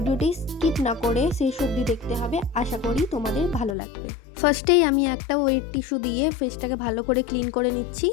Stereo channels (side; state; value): right; drops out; at 3.8 s